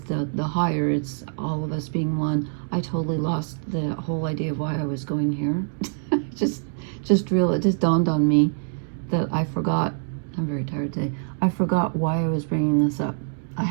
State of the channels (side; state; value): left; silent; digital silence